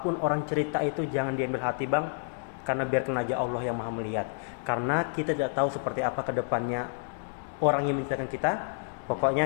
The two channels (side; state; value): right; silent; 58 dB below the other